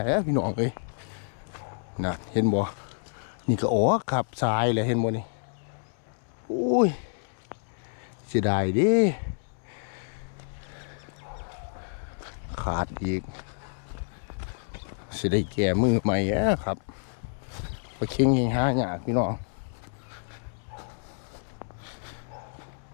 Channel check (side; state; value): right; silent; 59 dB below the other